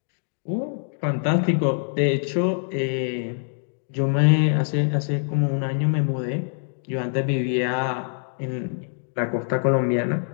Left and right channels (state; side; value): silent; right; digital silence